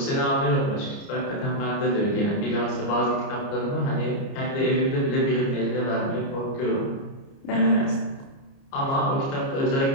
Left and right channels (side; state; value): right; late; 29 ms